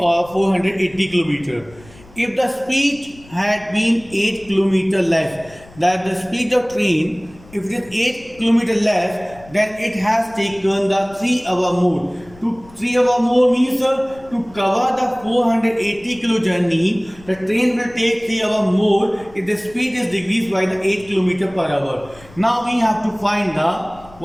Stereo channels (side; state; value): left; noise; rumble, 23 dB below the sound